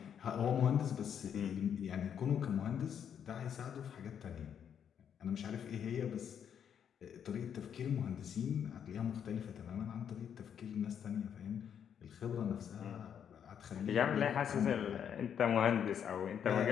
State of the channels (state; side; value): quieter; right; 8.4 dB